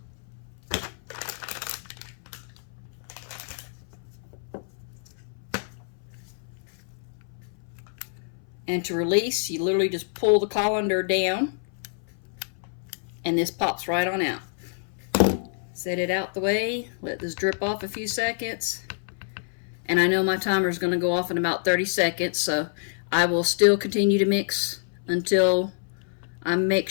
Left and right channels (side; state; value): right; silent; 58 dB below the other